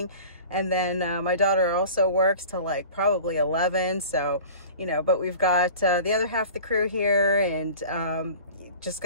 And then my daughter also works till like probably 11. So, but we've got the other half of the crew here, and just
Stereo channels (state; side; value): inverted; both; correlation -0.40